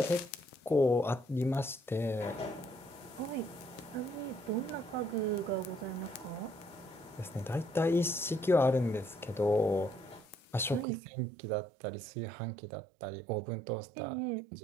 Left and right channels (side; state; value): left; drops out; at 10.9 s